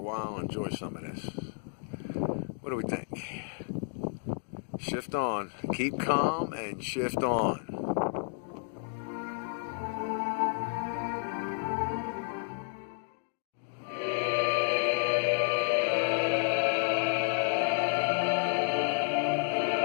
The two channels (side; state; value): right; silent; 57 dB below the other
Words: while. shift on. Keep calm and shift on.